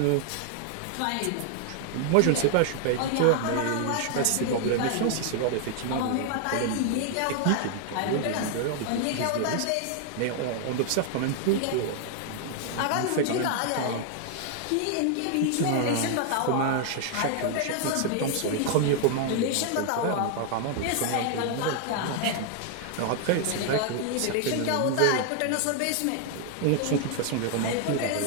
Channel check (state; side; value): different; both; correlation 0.00